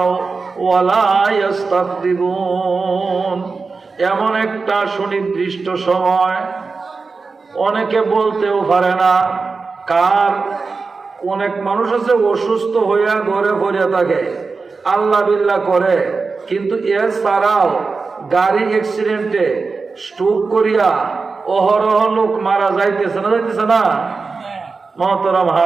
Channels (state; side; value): quieter; left; 4.4 dB